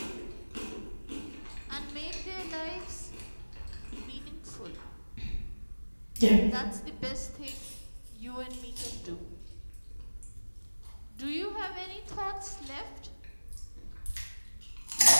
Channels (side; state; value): both; inverted; correlation -1.00